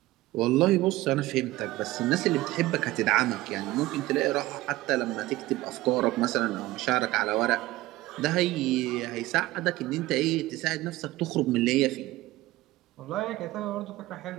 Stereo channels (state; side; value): quieter; left; 17.7 dB